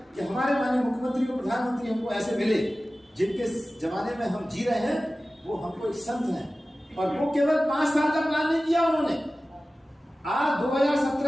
कि हमारे माननीय मुख्यमंत्री और प्रधानमंत्री हमको ऐसे मिले जिनके जमाने में हम जी रहे हैं। वो हमको एक संत हैं, और वो केवल 5 साल का प्लान नहीं किया उन्होंने। आज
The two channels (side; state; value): both; normal; correlation 0.96